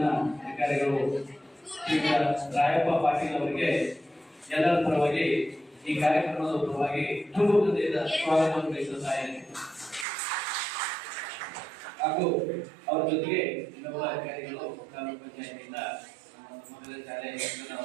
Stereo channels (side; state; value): left; drops out; at 10.1 s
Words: ಅಧಿಕಾರಿಗಳು ರಾಯಪ್ಪ ಪಾಟೀಲ್ ಅವರಿಗೆ ಎಲ್ಲರ ಪರವಾಗಿ ಈ ಕಾರ್ಯಕ್ರಮದ ಪರವಾಗಿ ತುಂಬ ಹೃದಯದ ಸ್ವಾಗತವನ್ನು ಬಯಸುತ್ತಾ ಇದ್ದೇನೆ. ಹಾಗೂ ಅವರ ಜೊತೆಗೆ ಇನ್ನೊಬ್ಬ ಅಧಿಕಾರಿಗಳು ಗ್ರಾಮ ಪಂಚಾಯತಿಯಿಂದ ಮೊದಲ ಶಾಲೆ